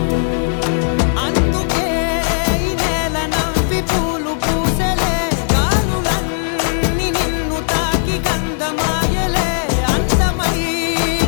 అందుకే ఈ నేల నవ్వి పూలు పూసెలే, గాలులన్నీ నిన్ను తాకి గంధమాయలే,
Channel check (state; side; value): silent; right; digital silence